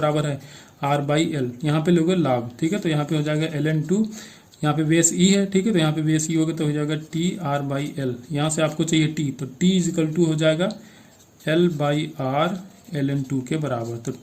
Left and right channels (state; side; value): identical; both; correlation 1.00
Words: है, आर बाई एल, यहाँ पे लोगे लाभ। ठीक है, तो यहाँ पे हो जाएगा ln2, यहाँ पे बेस ई है। ठीक है, तो यहाँ पे बेस ई होगा तो हो जाएगा टी आर बाई एल, यहाँ से आपको चाहिए टी, तो टी इजिकल टू हो जाएगा L बाई आर ln2 के बराबर। तो